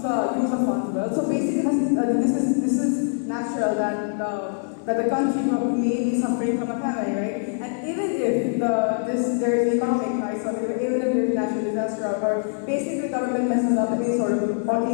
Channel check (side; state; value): right; silent; digital silence